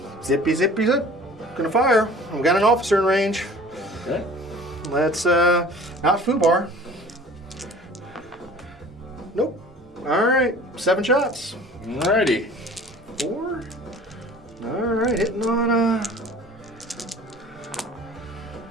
Zippy, zippy, zip. Gonna fire. We got an officer in range. Okay. Let's, not foobar. Nope. All right, 7 shots. Alrighty. 4. All right, hitting on,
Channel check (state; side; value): normal; both; correlation 0.46